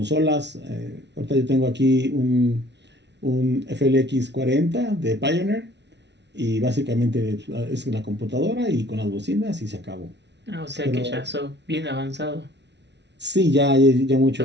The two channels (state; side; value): late; left; 0.50 ms